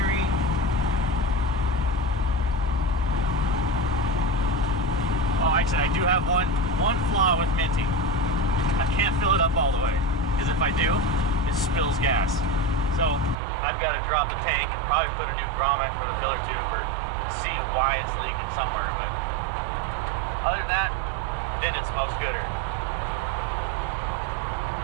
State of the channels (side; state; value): left; drops out; at 13.4 s